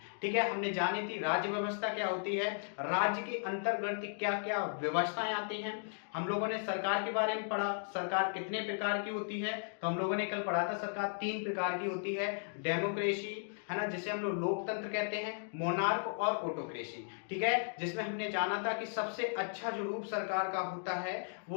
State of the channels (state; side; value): silent; right; digital silence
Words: ठीक है, हमने जानी थी राज्य व्यवस्था क्या होती है, राज्य के अंतर्गत क्या क्या व्यवस्थाएं आती हैं। हम लोगों ने सरकार के बारे में पढ़ा, सरकार कितने प्रकार की होती है। तो हम लोगों ने कल पढ़ा था सरकार 3 प्रकार की होती है। डेमोक्रेसी है ना, जिसे हम लोग लोकतंत्र कहते हैं, मोनार्क और ऑटोक्रेसी। ठीक है, जिसमें हमने जाना था कि सबसे अच्छा जो रूप सरकार का होता है